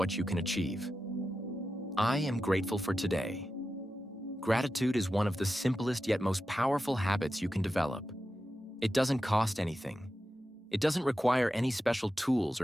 you can achieve. I am grateful for today. Gratitude is one of the simplest yet most powerful habits you can develop. It doesn't cost anything. It doesn't require any special tools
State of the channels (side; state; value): both; normal; correlation 0.91